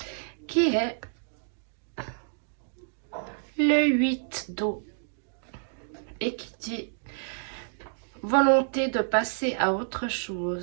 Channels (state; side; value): silent; left; digital silence